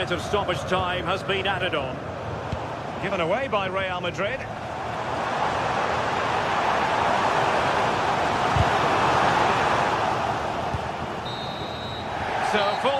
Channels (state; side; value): identical; both; correlation 1.00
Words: of stoppage time has been added on. Given away by Real Madrid. So